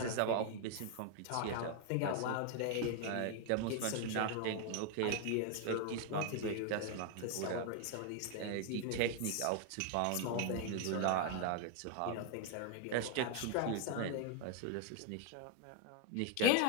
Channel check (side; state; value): both; different; correlation 0.01